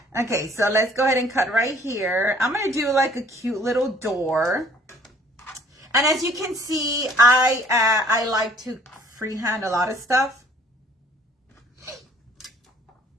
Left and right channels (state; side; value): normal; both; correlation 0.57